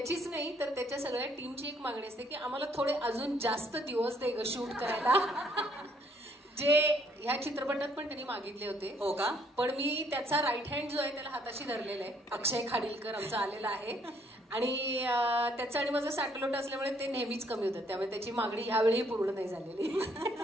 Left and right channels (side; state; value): both; normal; correlation 0.67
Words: नाही तर त्याच्या सगळ्या टीमची एक मागणी असते की आम्हाला थोडे अजून जास्त दिवस दे ग शूट करायला. जे ह्या चित्रपटात पण त्यांनी मागितले होते. हो का? पण मी त्याचा राईट हँड जो आहे त्याला हाताशी धरलेला आहे. अक्षय खाडीलकर आमचा आलेला आहे आणि त्याचं आणि माझं साटलोट असल्यामुळे ते नेहमीच कमी होतात, त्यामुळे त्याची मागणी ह्यावेळी पूर्ण नाही झालेली.